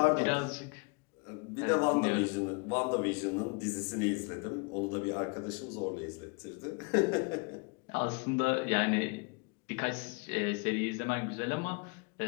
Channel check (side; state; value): right; quieter; 31.9 dB